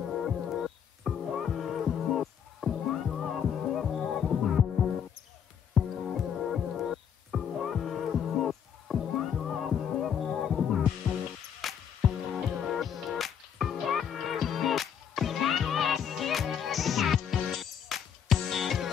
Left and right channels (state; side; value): quieter; right; 8.2 dB